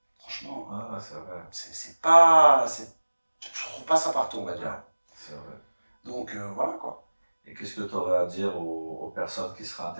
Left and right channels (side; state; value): both; inverted; correlation -1.00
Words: franchement, c'est pas... Je trouve pas ça partout, on va dire. C'est vrai. Donc voilà quoi. Et qu'est-ce que tu aurais à dire aux personnes qui seraient